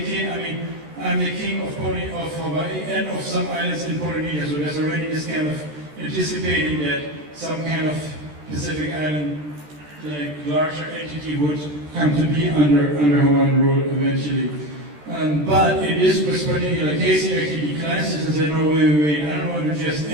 of Hawaii and of some islands in Polynesia. So there's already this kind of anticipating that some kind of Pacific island, like larger entity, would come to be under Hawaiian rule eventually. But in this particular case, he actually declines this and said, no, wait, I don't want to just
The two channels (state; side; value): late; left; 13 ms